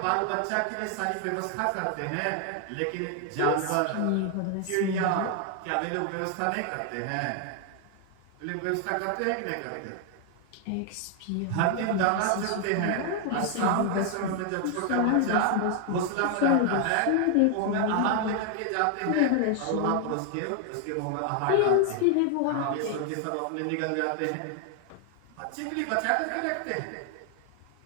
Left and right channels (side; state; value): both; different; correlation 0.00